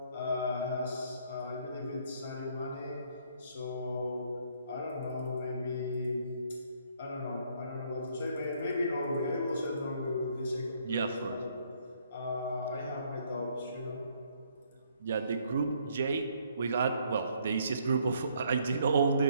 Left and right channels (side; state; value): both; inverted; correlation -0.67